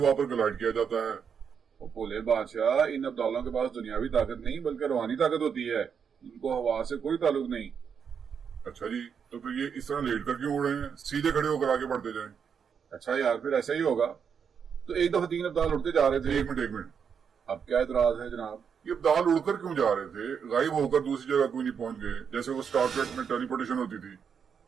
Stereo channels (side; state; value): left; quieter; 7.0 dB